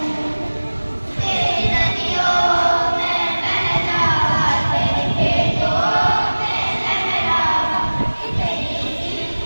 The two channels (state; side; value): inverted; both; correlation -1.00